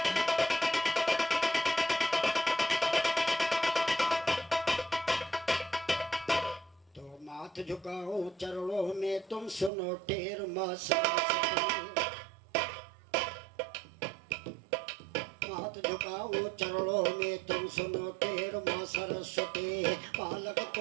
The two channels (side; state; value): left; drops out; at 9.7 s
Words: तो माथ झुकाऊं चरणों में तुम सुनो टेर माँ सरस्वती, हाथ झुकाओ चरणों में तुम सुनो टेर माँ सरस्वती, बालक